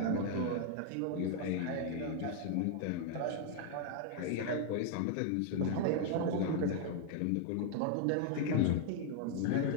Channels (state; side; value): different; both; correlation 0.00